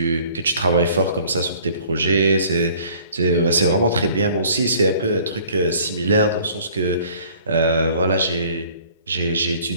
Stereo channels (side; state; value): both; inverted; correlation -0.54